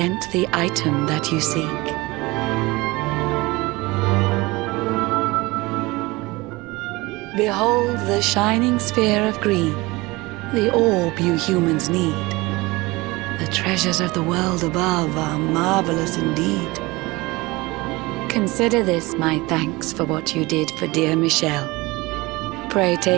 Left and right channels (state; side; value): quieter; left; 22.3 dB